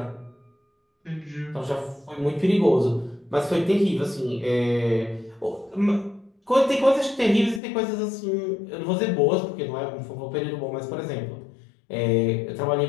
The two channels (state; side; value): drops out; right; at 7.6 s